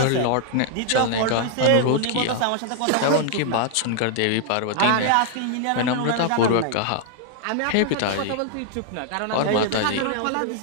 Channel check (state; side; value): different; both; correlation 0.00